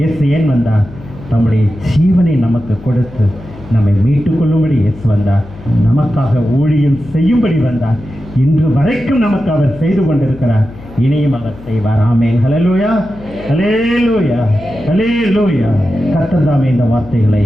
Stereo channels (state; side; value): noise; left; hum, 18 dB below the sound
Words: ஏன் வந்தார்? தம்முடைய ஜீவனை நமக்கு கொடுத்து நம்மை மீட்டுக் கொள்ளும்படி இயேசு வந்தார். நமக்காக ஊழியம் செய்யும்படி வந்தார். இன்று வரைக்கும் நமக்கு அவர் செய்து கொண்டிருக்கிறார். இனியும் அவர் செய்வார். ஆமென், ஹல்லேலூயா, ஹல்லேலூயா, ஹல்லேலூயா. கர்த்தர் தாமே இந்த வார்த்தைகளை